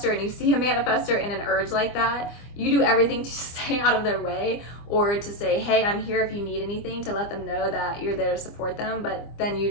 and you see a manifestor in an urge like that, you do everything to stay out of their way or to say, hey, I'm here if you need anything, to let them know that you're there to support them. But then you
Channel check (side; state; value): right; late; 25 ms